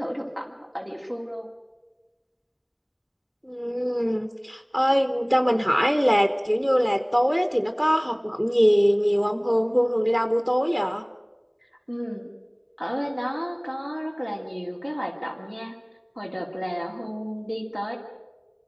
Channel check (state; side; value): identical; both; correlation 1.00